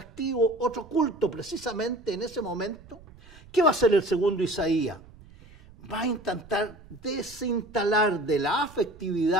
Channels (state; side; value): noise; right; rumble, 22 dB below the sound